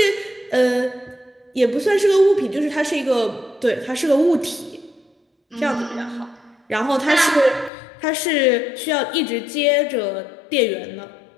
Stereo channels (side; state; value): right; drops out; at 7.7 s